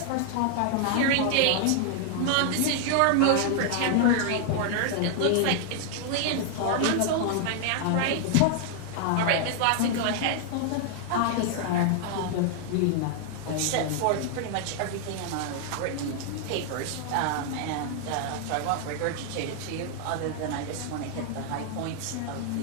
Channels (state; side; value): different; both; correlation 0.00